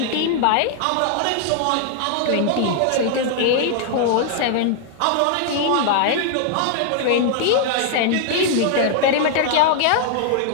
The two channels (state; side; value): different; both; correlation 0.00